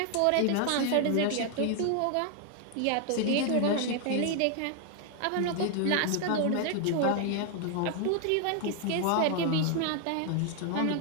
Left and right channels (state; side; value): different; both; correlation 0.00